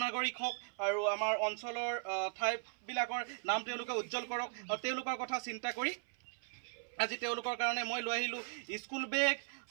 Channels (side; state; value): left; silent; 52 dB below the other